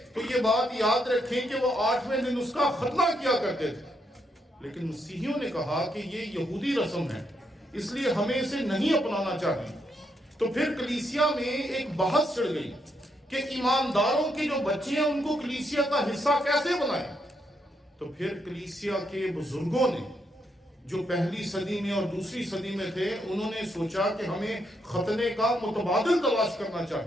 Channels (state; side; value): normal; both; correlation 0.78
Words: تو یہ بات یاد رکھیں کہ وہ 8ویں دن اس کا ختنہ کیا کرتے تھے. لیکن مسیحیوں نے کہا کہ یہ یہودی رسم ہے، اس لیے ہمیں اسے نہیں اپنانا چاہیے. تو پھر کلیسیا میں ایک بحث چڑھ گئی کہ ایمانداروں کے جو بچے ہیں ان کو کلیسیا کا حصہ کیسے بنائیں. تو پھر کلیسیا کے بزرگوں نے جو پہلی صدی میں اور دوسری صدی میں تھے انہوں نے سوچا کہ ہمیں ختنے کا متبادل تلاش کرنا